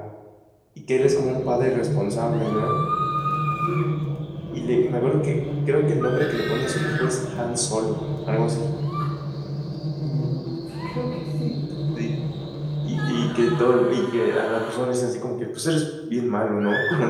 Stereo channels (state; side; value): identical; both; correlation 1.00